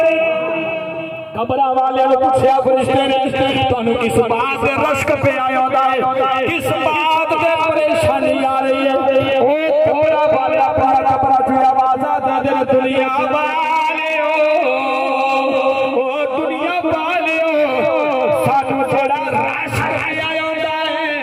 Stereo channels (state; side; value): identical; both; correlation 1.00